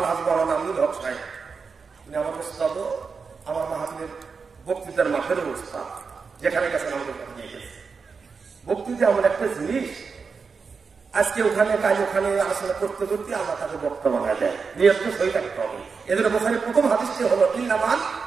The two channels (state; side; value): quieter; left; 5.2 dB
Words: মাওলানা আমিনুল হক সাহেব, তিনি আমার উস্তাদ, আমার মাহফিলের বক্তৃতার মাঠের উস্তাদ, যেখানে গেছেন আমাদের নিয়ে গেছে। বক্তৃতা এমন একটা জিনিস, আজকে ওখানে কাজ ওখানে আলোচনা করতে করতে আল্লাহ তাকে বক্তা বানায় দেয়, নিয়ত সই থাকতে হবে। এদের বোখারি প্রথম হাদিসটি হলো ইন্নামাল